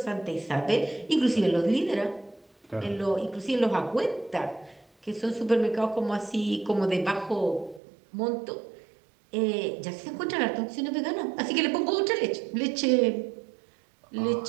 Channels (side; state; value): left; drops out; at 7.8 s